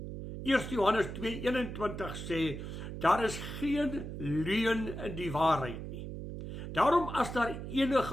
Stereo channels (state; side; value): noise; right; hum, 8 dB below the sound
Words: 1 Johannes 2:21 sê, daar is geen leuen in die waarheid nie. Daarom as daar